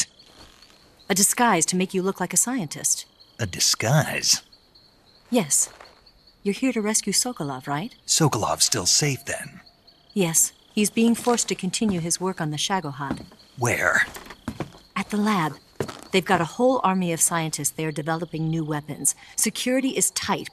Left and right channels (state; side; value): identical; both; correlation 1.00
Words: A disguise to make you look like a scientist. A disguise? Yes. You're here to rescue Sokolov, right? Sokolov's still safe then? Yes. He's being forced to continue his work on the Shagohod. Where? At the lab. They've got a whole army of scientists there developing new weapons. Security is tight,